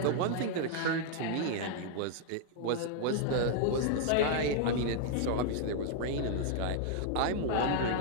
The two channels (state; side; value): different; both; correlation -0.01